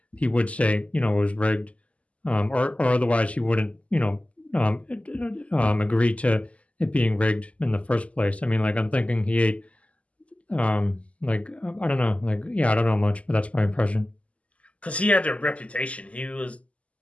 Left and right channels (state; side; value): late; right; 0.064 ms